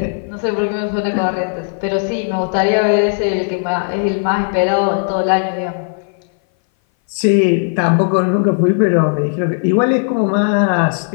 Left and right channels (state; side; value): silent; right; 59 dB below the other